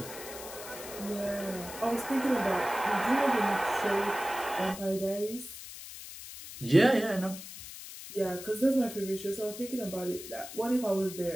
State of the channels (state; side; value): noise; left; hiss, 12 dB below the sound